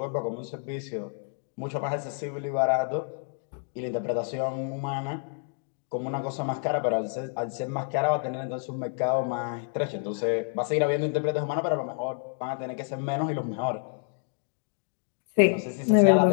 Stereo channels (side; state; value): right; silent; 59 dB below the other